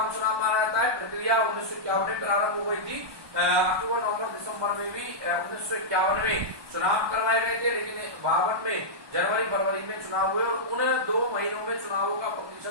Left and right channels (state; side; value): late; left; 1.2 ms